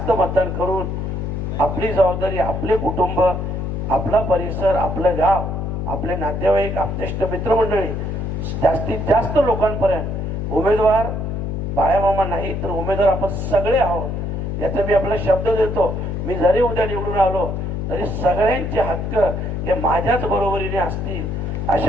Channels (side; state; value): left; noise; hum, 3 dB below the sound